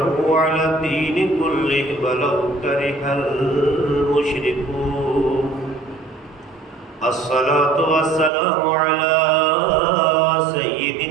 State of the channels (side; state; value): left; drops out; at 8.3 s